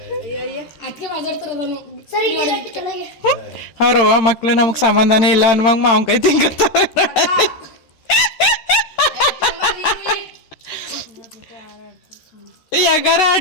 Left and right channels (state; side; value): late; right; 13 ms